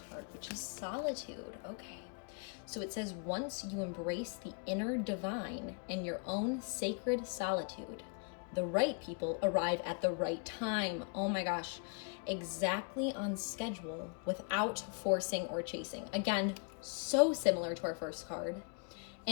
which is solitude. Okay. So it says, once you embrace the inner divine in your own sacred solitude, the right people arrive at the right time. Oh my gosh. Exactly on schedule without forcing or chasing. Again, so similar to our first card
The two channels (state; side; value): quieter; right; 38.4 dB